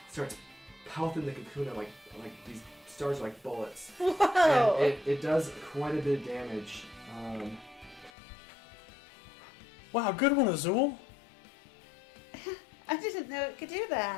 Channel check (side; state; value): right; drops out; at 8.1 s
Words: starts pelting the Kakuna like these stars are like bullets. Whoa! And it does quite a bit of damage. wow, good one, Azul. I didn't know it could do